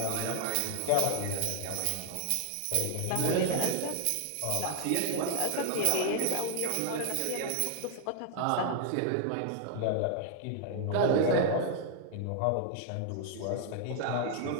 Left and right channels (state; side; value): different; both; correlation 0.00